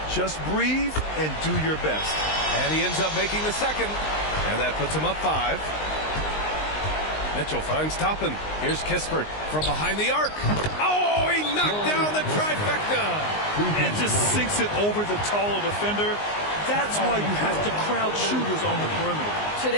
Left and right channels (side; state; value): right; late; 19 ms